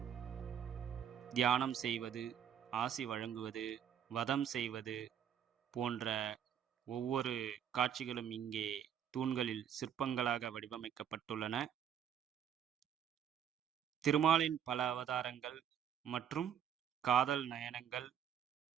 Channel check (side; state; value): left; quieter; 9.0 dB